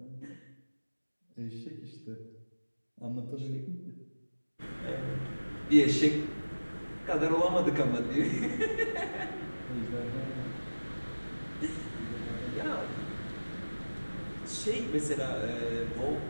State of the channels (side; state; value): both; inverted; correlation -1.00